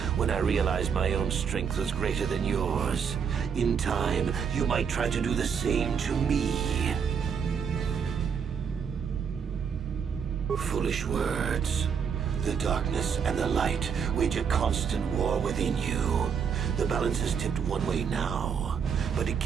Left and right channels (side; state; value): left; quieter; 6.9 dB